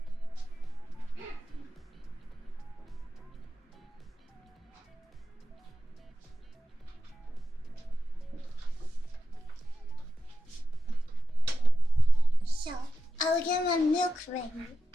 I will get my milk ready.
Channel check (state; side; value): normal; both; correlation 0.91